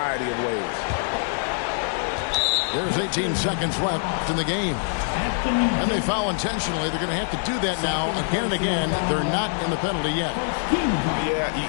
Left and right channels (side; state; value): right; silent; digital silence